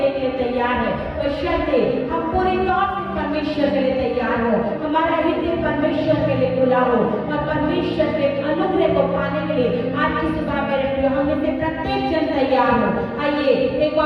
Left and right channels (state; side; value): identical; both; correlation 1.00